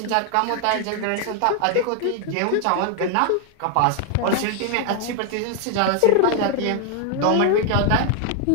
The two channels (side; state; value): both; different; correlation 0.00